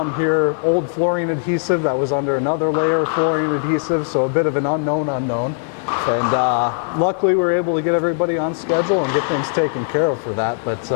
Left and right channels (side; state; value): right; silent; 60 dB below the other